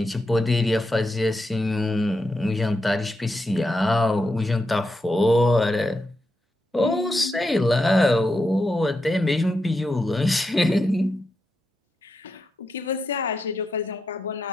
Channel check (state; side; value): normal; both; correlation 0.85